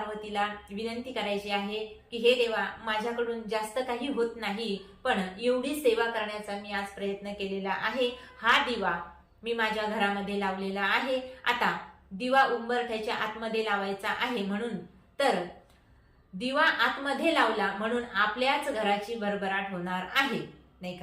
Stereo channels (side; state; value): both; identical; correlation 1.00